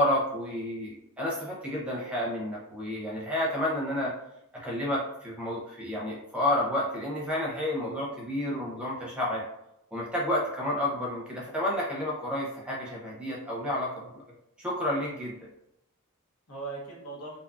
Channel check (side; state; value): both; normal; correlation 0.19